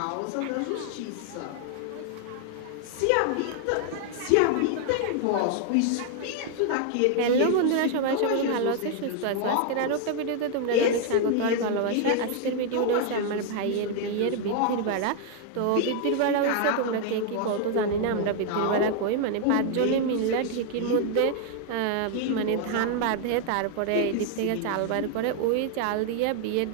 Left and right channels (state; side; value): different; both; correlation 0.00